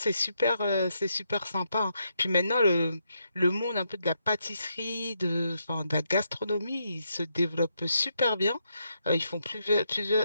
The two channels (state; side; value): inverted; both; correlation -0.79